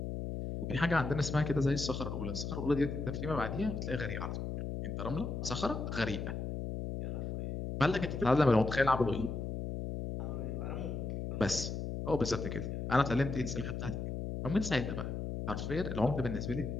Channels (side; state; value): left; noise; hum, 4 dB below the sound